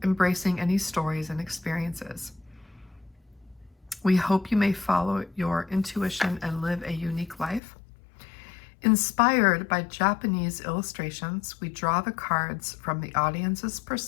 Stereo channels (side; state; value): right; drops out; at 7.6 s